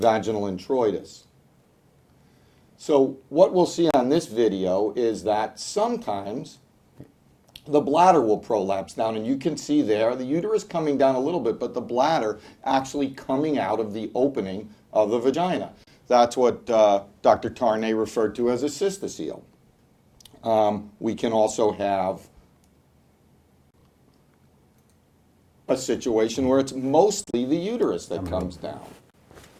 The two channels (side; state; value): both; identical; correlation 1.00